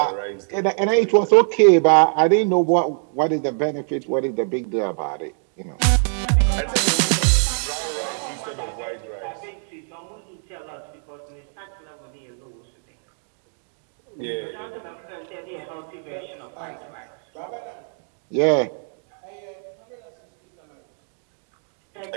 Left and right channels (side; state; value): left; silent; 58 dB below the other